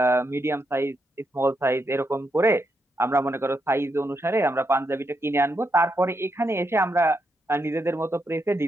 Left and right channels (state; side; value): normal; both; correlation 0.81